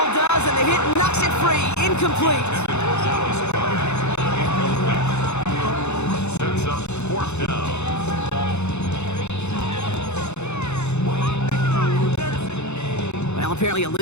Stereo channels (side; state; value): right; late; 0.82 ms